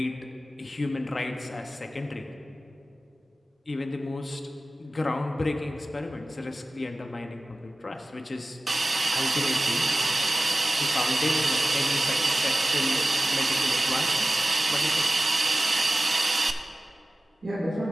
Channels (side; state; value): both; normal; correlation 0.96